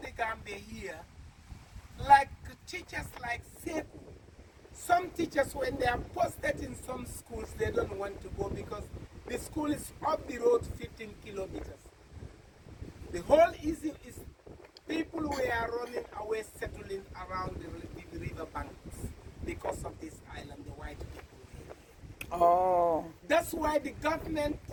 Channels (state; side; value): identical; both; correlation 1.00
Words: Gambia here, like teachers like Seku, some teachers when they are posted in some schools, they don't want to go because the school is up the road 15 kilometers. The whole issue is people who are running away, settling around the river banks because of this island, the white people. Oh. That's why the government